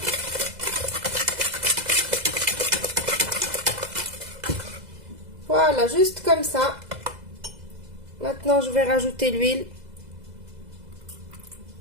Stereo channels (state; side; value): late; left; 2.0 ms